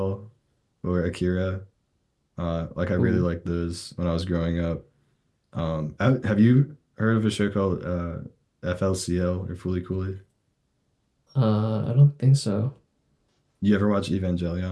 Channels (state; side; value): identical; both; correlation 1.00